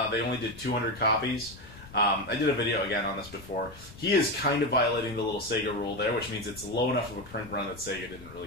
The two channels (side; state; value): left; noise; rumble, 18 dB below the sound